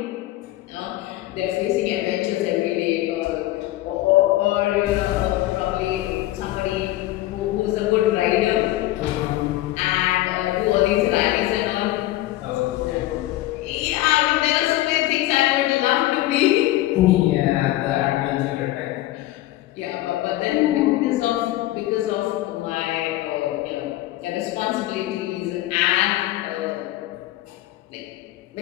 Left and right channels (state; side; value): quieter; right; 16.1 dB